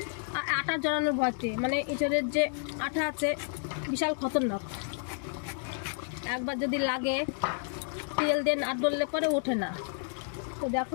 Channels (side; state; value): right; silent; 57 dB below the other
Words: আটা জড়ানোর ভয়তে। মানে ইঁচড়ের যে আঠা আছে বিশাল খতরনাক, একবার যদি লাগে তেল দিয়ে না ডললে পরে ওঠে না। তো